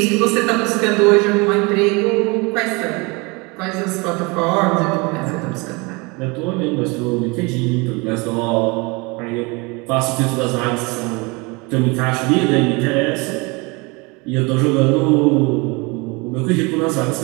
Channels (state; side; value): quieter; left; 27.3 dB